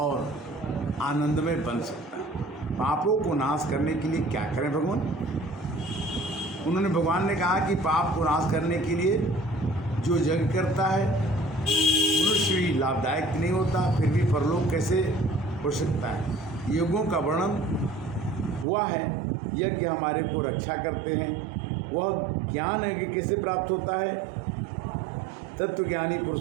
आनंदमय बन सकता है। पापों को नाश करने के लिए क्या करें भगवान? उन्होंने भगवान ने कहा कि पाप को नाश करने के लिए जो यज्ञ करता है मनुष्य भी लाभदायक नहीं होता, फिर भी परलोक कैसे हो सकता है। यज्ञों का वर्णन हुआ है। यज्ञ हमारे को रक्षा करते हैं। वह ज्ञान है कि कैसे प्राप्त होता है। तत्वज्ञानी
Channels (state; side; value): drops out; left; at 18.7 s